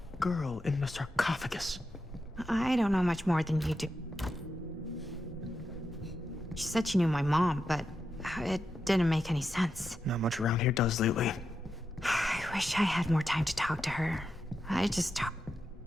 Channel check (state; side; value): normal; both; correlation 0.87